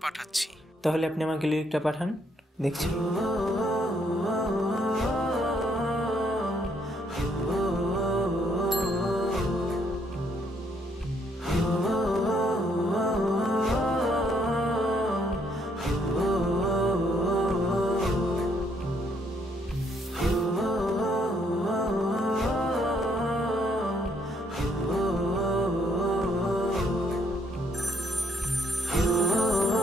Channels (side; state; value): both; normal; correlation 0.70